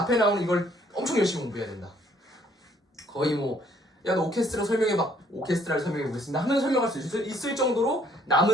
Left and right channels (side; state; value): both; normal; correlation 0.64